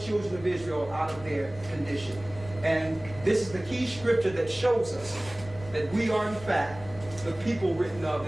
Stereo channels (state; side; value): noise; left; rumble, 16 dB below the sound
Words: of Israel out of their condition. And this is the key scripture that shows us that we are in fact the people written of